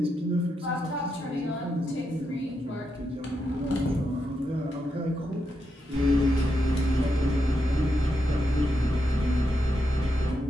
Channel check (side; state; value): both; normal; correlation 0.84